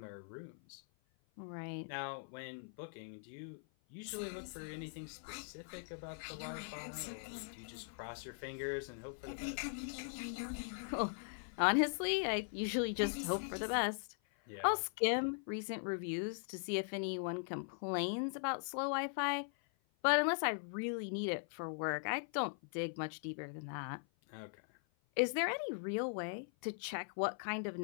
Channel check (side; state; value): right; silent; 51 dB below the other